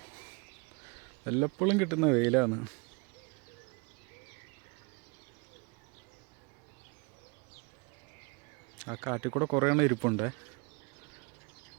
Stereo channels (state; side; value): quieter; left; 30.4 dB